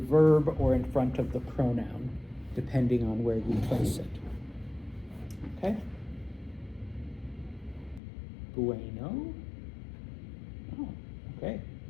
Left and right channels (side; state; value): right; drops out; at 8.0 s